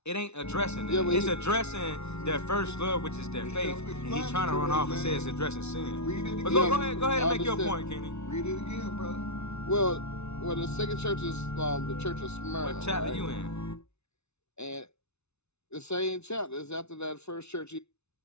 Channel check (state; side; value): late; right; 0.81 ms